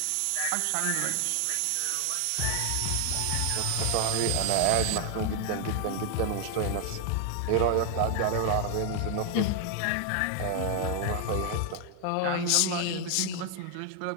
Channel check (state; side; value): different; both; correlation 0.00